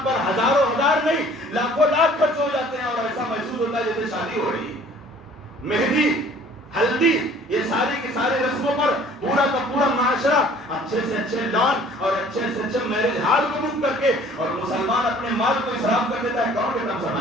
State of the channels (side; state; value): both; normal; correlation 0.53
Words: پر ہزاروں ہزار نہیں لاکھوں لاکھ خرچ ہو جاتے ہیں، اور ایسا محسوس ہوتا ہے جیسے شادی ہو رہی ہے۔ مہندی، ہلدی، یہ ساری کی ساری رسموں پر پورا کا پورا معاشرہ اچھے سے اچھے لان اور اچھے سے اچھے میرج ہال کو بک کر کے، اور مسلمان اپنے مال کو اسراف کر دیتا ہے۔ کون کہتا